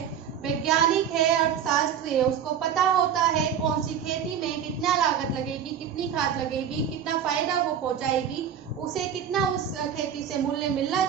वैज्ञानिक है, अर्थशास्त्री है, उसको पता होता है कौन सी खेती में कितना लागत लगेगी, कितनी खाद लगेगी, कितना फायदा वो पहुंचाएगी, उसे कितना उस खेती से मूल्य मिलना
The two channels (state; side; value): quieter; left; 8.4 dB